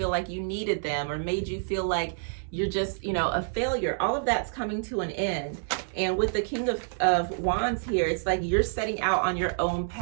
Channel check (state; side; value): silent; left; digital silence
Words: like you needed them, or made you feel like you're just, you know, a failure. All of that's coming to an end. And with the King of Wands here, it's like you're setting out on your own